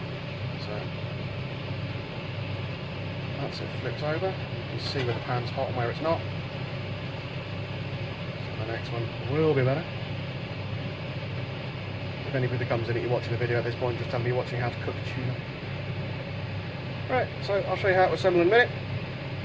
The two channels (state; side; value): identical; both; correlation 1.00